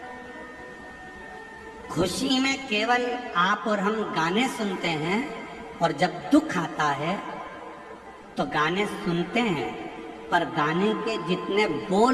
खुशी में केवल आप और हम गाने सुनते हैं, और जब दुख आता है तो गाने सुनते हैं, पर गाने के जितने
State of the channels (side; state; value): both; identical; correlation 1.00